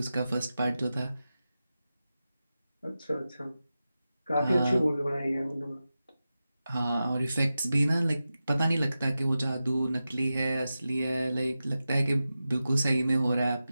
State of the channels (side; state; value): both; inverted; correlation -0.93